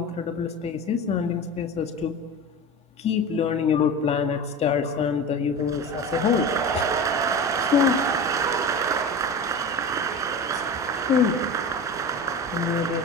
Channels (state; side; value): normal; both; correlation 0.29